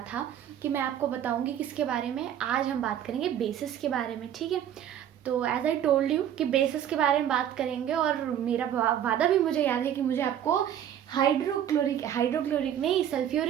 था कि मैं आपको बताऊंगी किसके बारे में। आज हम बात करेंगे बेसिस के बारे में, ठीक है। तो एज आई टोल्ड यू कि बेसिस के बारे में बात करेंगे और मेरा वादा भी मुझे याद है कि मुझे आपको हाइड्रोक्लोरिक नहीं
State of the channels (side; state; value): left; quieter; 10.2 dB